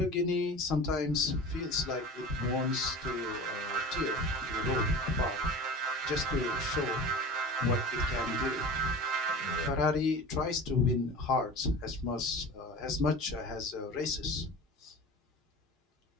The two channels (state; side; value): normal; both; correlation 0.36